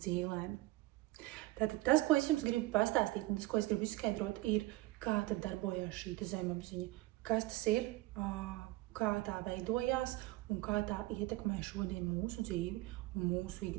Tātad tas, ko es jums gribu pastāstīt, un tas, ko es gribu izskaidrot, ir, kā tad darbojās šī zemapziņa, kas tas ir, kā tā veidojās un kā tā ietekmē šodien mūsu dzīvi un mūsu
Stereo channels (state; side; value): quieter; left; 18.5 dB